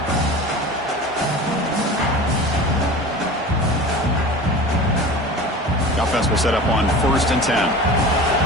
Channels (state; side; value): normal; both; correlation 0.36